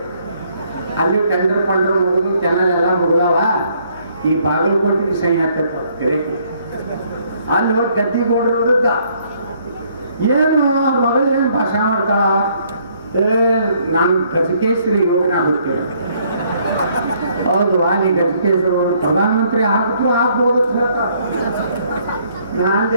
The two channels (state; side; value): inverted; both; correlation -0.67